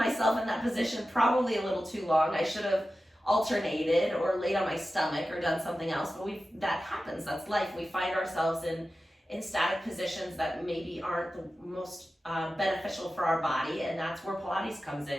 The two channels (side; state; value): both; normal; correlation 0.93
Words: in that position probably a little too long. I should have alternated or laid on my stomach or done something else, but that happens. That's life. We find ourselves in static positions that maybe aren't the most beneficial for our body, and that's where Pilates comes